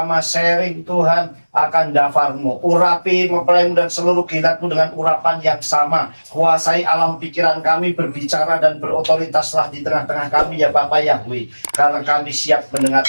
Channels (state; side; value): inverted; both; correlation -1.00